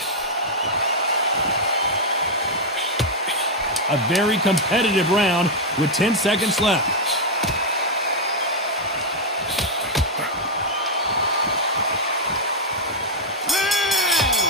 A very competitive round with 10 seconds left.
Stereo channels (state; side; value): normal; both; correlation 0.00